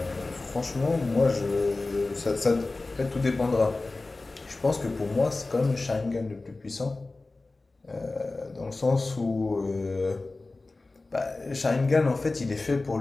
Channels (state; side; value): quieter; right; 3.3 dB